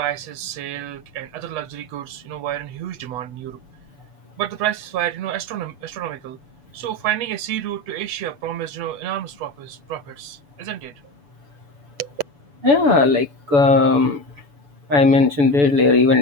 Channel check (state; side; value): late; left; 8.3 ms